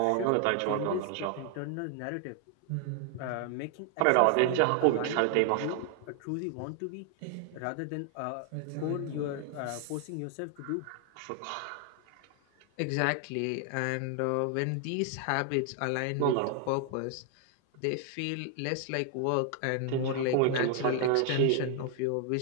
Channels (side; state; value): both; different; correlation 0.00